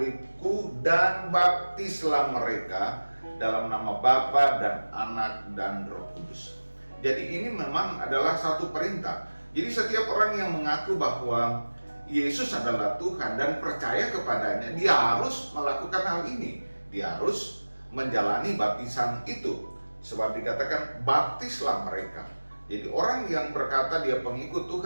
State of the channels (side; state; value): both; inverted; correlation -1.00